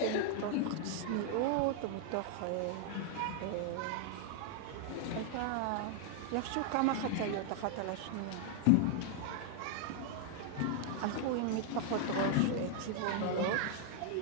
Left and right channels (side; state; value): both; different; correlation 0.00